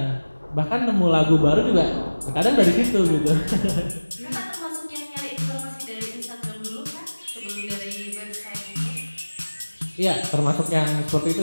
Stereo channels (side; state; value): both; inverted; correlation -1.00